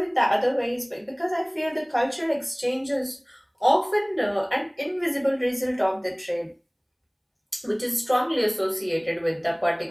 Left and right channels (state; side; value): identical; both; correlation 1.00